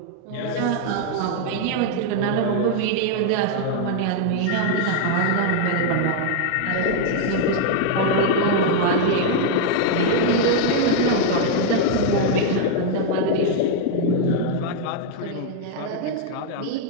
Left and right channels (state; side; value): different; both; correlation 0.00